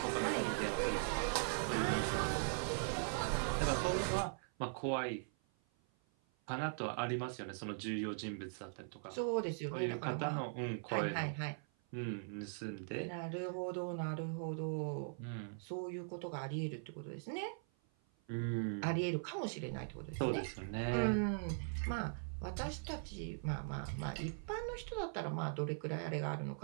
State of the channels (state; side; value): silent; left; 51 dB below the other